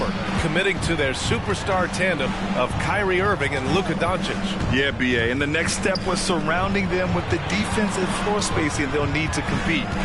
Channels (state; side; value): identical; both; correlation 1.00